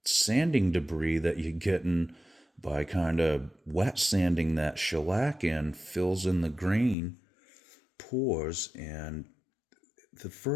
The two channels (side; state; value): right; drops out; at 7.0 s